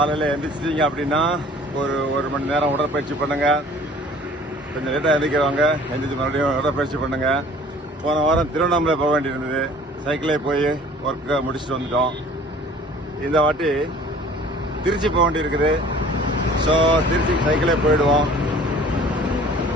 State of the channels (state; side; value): normal; both; correlation 0.49